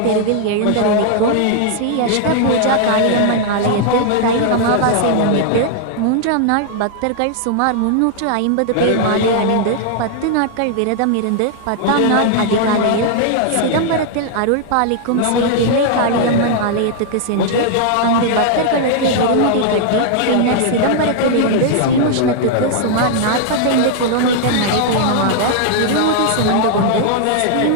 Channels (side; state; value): both; different; correlation 0.00